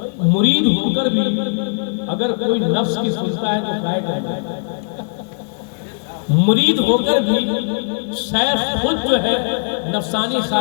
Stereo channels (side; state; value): right; silent; digital silence